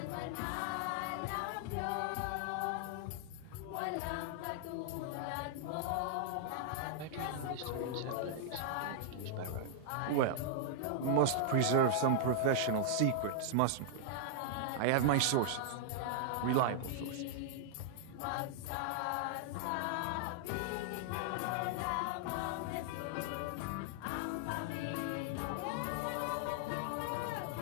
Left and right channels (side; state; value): both; different; correlation -0.01